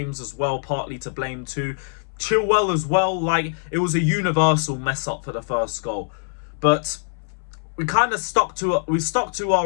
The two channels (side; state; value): right; silent; 63 dB below the other